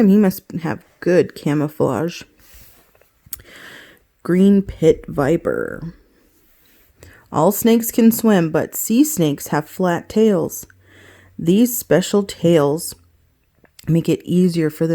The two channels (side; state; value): both; identical; correlation 1.00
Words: He must have good camouflage. Green pit viper. All snakes can swim, but sea snakes have flat tails. These special tails make it easier for